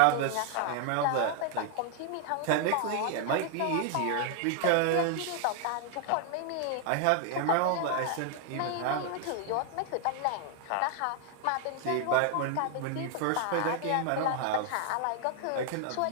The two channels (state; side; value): different; both; correlation 0.00